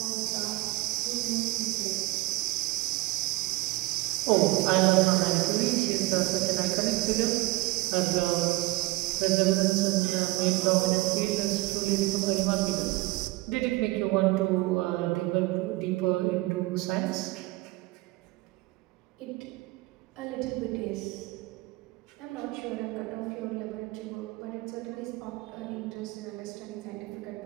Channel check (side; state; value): left; quieter; 20.9 dB